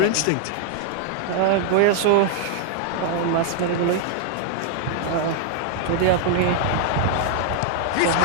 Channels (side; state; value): both; different; correlation 0.00